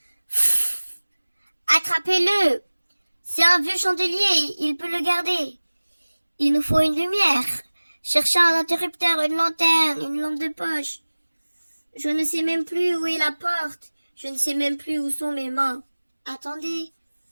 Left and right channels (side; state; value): both; inverted; correlation -1.00